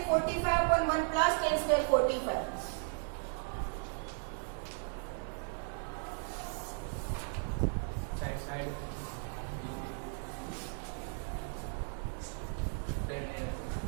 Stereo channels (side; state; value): left; silent; 54 dB below the other